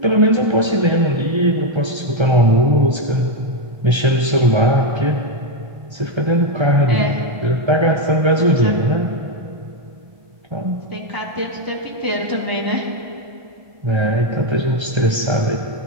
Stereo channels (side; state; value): left; late; 1.3 ms